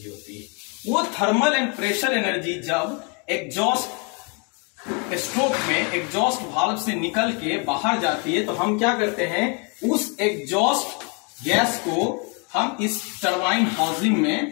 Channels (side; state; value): right; quieter; 34.2 dB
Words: होती है। वो थर्मल एंड प्रेशर एनर्जी जब एग्जॉस्ट स्ट्रोक में एग्जॉस्ट वाल्व से निकल के बाहर जाती है तो हम क्या करते हैं उस एग्जॉस्ट गैस को हम इस टरबाइन हाउसिंग